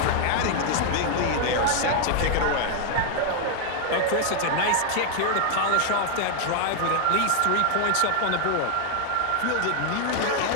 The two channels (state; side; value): different; both; correlation 0.00